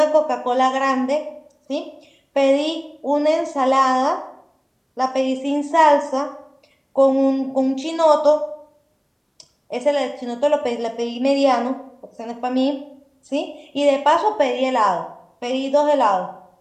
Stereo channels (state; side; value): identical; both; correlation 1.00